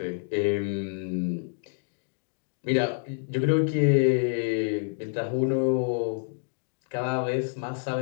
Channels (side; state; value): right; silent; digital silence